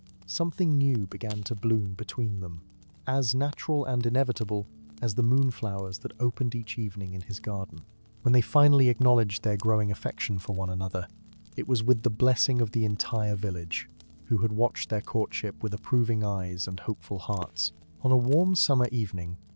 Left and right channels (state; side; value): inverted; both; correlation -1.00